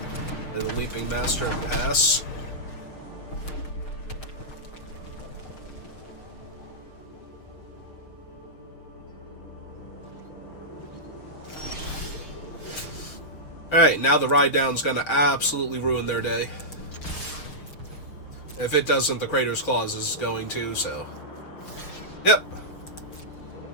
And the Leaping Master and pass. Alright, now the Ride Down's gonna absolutely ruin their day. If it doesn't, the Crater's Claws is going to, so... Yep.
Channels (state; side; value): late; right; 6.5 ms